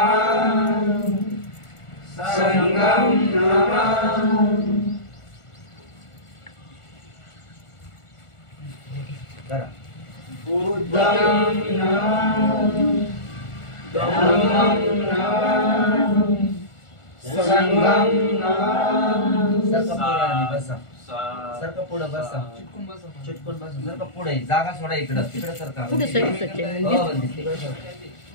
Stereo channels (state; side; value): late; right; 1.4 ms